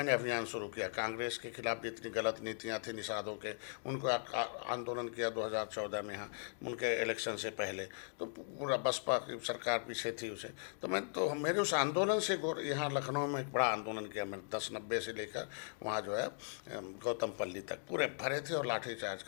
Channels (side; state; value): right; silent; digital silence